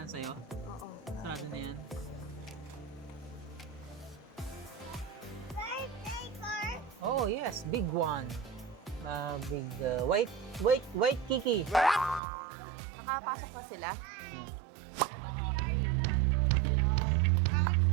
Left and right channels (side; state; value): left; drops out; at 12.2 s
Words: sa'yo? Oo. Sarado na yan. Oh yes, big one. Big white Kiki. Nakapasok na sila. Mag-CR na lahat. Go, go, go.